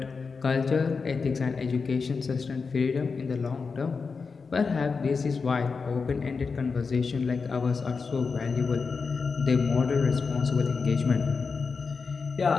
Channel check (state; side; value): quieter; right; 4.9 dB